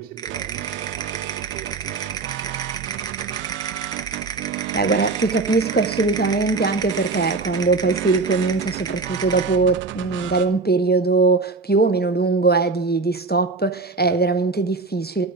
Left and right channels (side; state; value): left; quieter; 3.9 dB